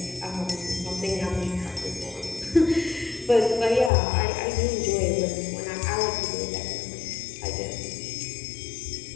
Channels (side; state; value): right; drops out; at 3.9 s